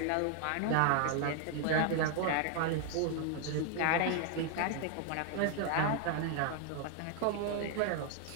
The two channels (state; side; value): different; both; correlation 0.00